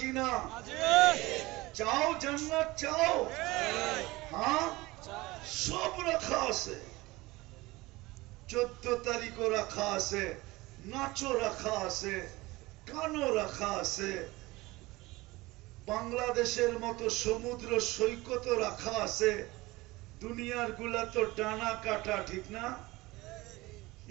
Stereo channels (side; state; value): left; quieter; 20.7 dB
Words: না? চাও জান্নাত? চাও? হ্যাঁ, সব রাখা আছে। 14 তারিখও রাখা আছে, নাচও রাখা আছে, গানও রাখা আছে, বাংলাদেশের মতো সমুদ্র সৈকতও রাখা আছে। দুনিয়ার গুলা তো ডানা কাটা, ঠিক না?